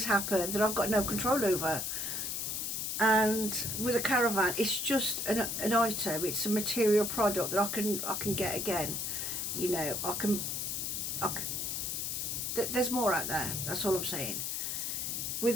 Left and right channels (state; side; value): noise; left; hiss, 2 dB below the sound